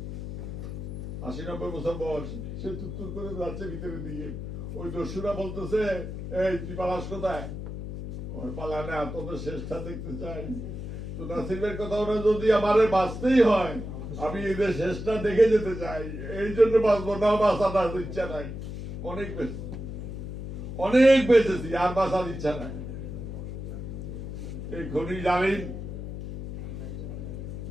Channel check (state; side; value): noise; left; hum, 7 dB below the sound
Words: ৮০-৯০ বছর বয়স, সে তুত্তুর করে যাচ্ছে ভিতরের দিকে। ওই দস্যুরা বলতেছে, এই তুই পালাস কোথায়? ওই পালা না, তোদের শেষটা দেখতে চাই। তো নাসিমের কথা ওরা যদি আমারে বাঁচতেই হয়, আমি এদের শেষটা দেখে যেতে চাই, এই জন্য বাঁচবো না, বাঁচার ইচ্ছা নাই। অনেক বেঁচেছি, আর বাঁচার ইচ্ছা নাই। এই খনি জালিম